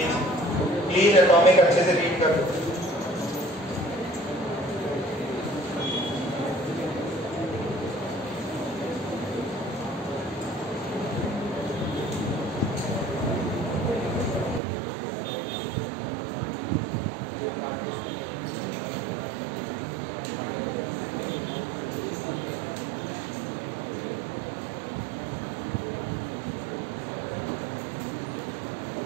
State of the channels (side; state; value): left; drops out; at 14.6 s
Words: Please atomic अच्छे से रीड कर लो।